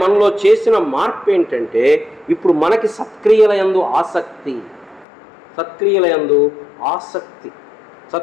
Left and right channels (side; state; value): right; drops out; at 5.1 s